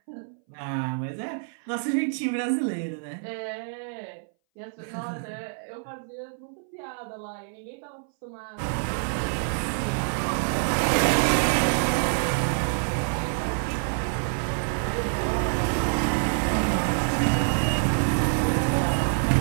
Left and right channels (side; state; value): left; silent; 59 dB below the other